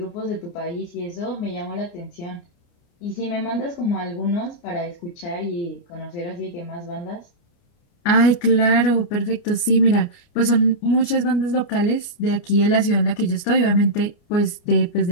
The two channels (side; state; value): right; late; 29 ms